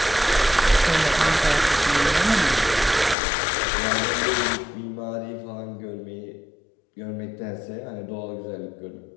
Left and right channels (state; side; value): drops out; right; at 3.2 s